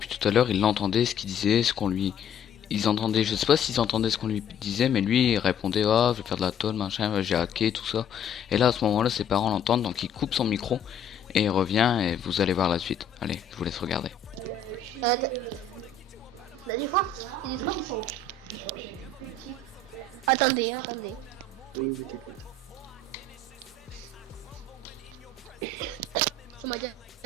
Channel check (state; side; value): quieter; right; 4.8 dB